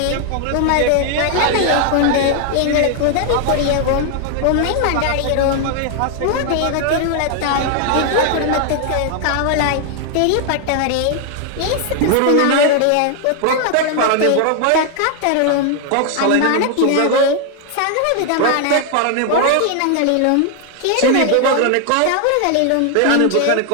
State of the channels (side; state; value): both; different; correlation 0.00